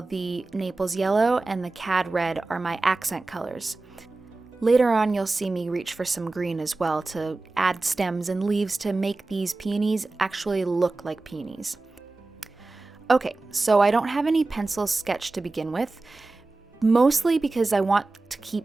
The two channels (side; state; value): left; quieter; 3.3 dB